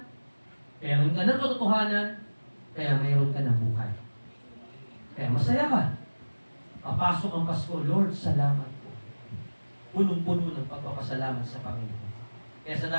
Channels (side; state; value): both; inverted; correlation -1.00